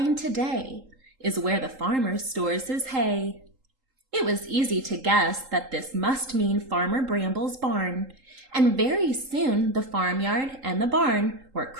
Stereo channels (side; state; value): left; late; 3.8 ms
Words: today is where the farmer stores his hay." It was easy to guess that this must mean Farmer Bramble's barn, and very soon the farmyard and the barn were